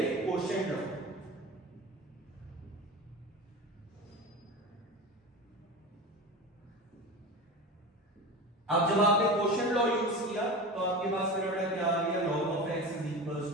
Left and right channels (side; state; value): both; normal; correlation 0.29